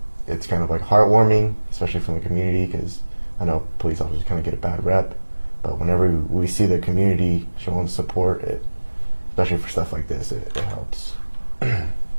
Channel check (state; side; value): inverted; both; correlation -1.00